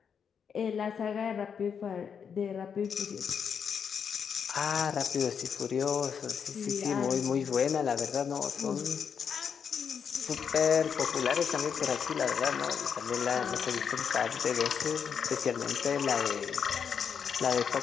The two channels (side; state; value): right; quieter; 7.0 dB